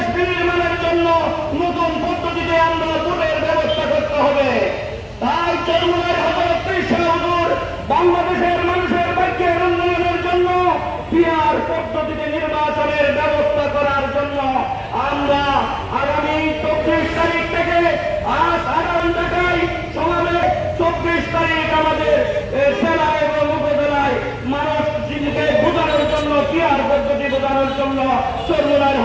বিনির্মাণের জন্য নতুন পদ্ধতিতে আমরা ভোটের ব্যবস্থা করতে হবে। তাই চরমুনায় হযরত ঈসা হুজুর বাংলাদেশের মানুষের ভাগ্যের উন্নয়নের জন্য পিআর পদ্ধতিতে নির্বাচনের ব্যবস্থা করার জন্য আমরা আগামী 24 তারিখ থেকে আজ আগামী ঢাকায় সমাবেশ 24 তারিখ আমাদের জেলা এবং উপজেলায় মানুষ জীবনকে বোঝানোর জন্য পিআর পদ্ধতি বোঝানোর জন্য চরমুনায়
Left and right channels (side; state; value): both; identical; correlation 1.00